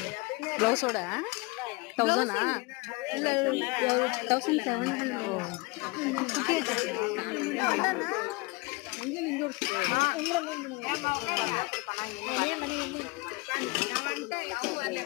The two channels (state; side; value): quieter; right; 25.4 dB